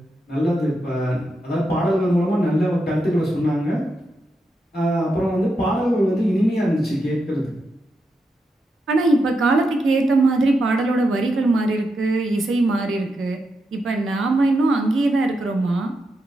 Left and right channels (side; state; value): both; normal; correlation 0.85